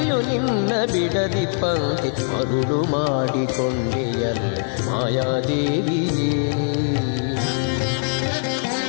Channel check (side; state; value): right; silent; 58 dB below the other